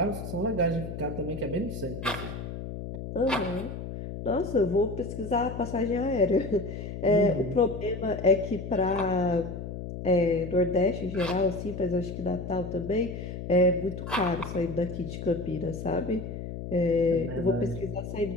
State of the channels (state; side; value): noise; left; hum, 8 dB below the sound